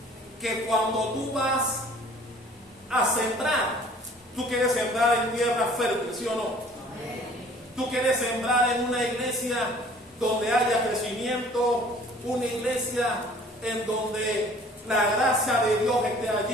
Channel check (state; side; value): normal; both; correlation 0.52